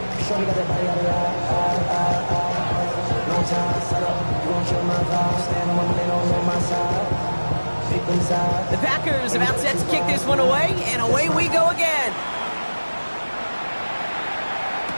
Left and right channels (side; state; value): both; inverted; correlation -1.00